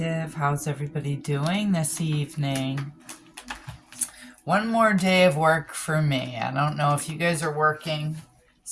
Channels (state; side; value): identical; both; correlation 1.00